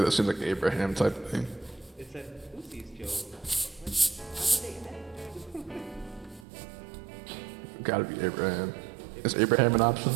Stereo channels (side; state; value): left; drops out; at 6.5 s